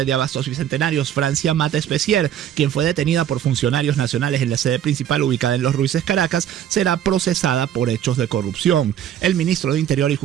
de Abastos Bicentenarios, Francia Mata Especier, quien fue detenida por funcionarios nacionales en la sede principal ubicada en Los Ruices, Caracas, será procesada por hechos de corrupción. El ministro de Interior y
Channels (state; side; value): quieter; left; 10.4 dB